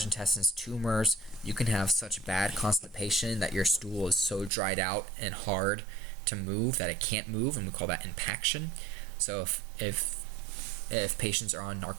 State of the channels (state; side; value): drops out; left; at 4.5 s